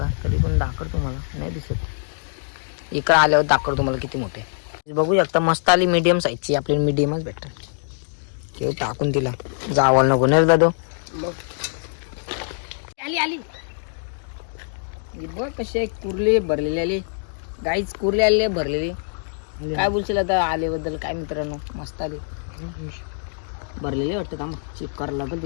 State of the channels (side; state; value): right; silent; digital silence